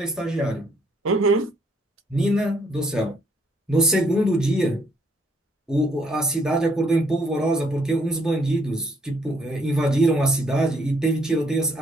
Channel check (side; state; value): both; normal; correlation 0.68